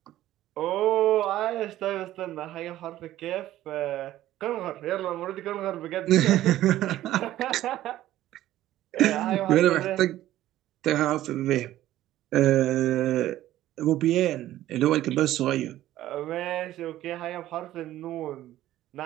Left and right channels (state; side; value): quieter; left; 14.1 dB